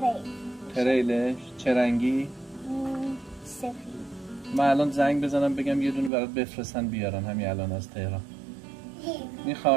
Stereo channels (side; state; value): left; drops out; at 6.1 s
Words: تریلش؟ چه رنگی؟ سفید. من الان زنگ بزنم بگم یه دونه برات بفرستن بیارن همین الان از تهران.